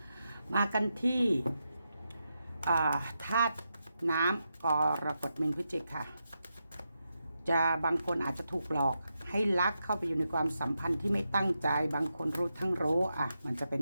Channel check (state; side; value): inverted; both; correlation -0.86